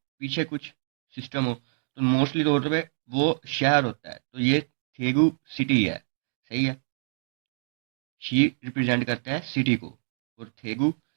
पीछे कुछ सिस्टम हो तो मोस्टली तौर पे वो शहर होता है, तो ये थेगू सिटी है। सही है, शी रिप्रेजेंट करता है सिटी को और थेगू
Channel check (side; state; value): left; silent; digital silence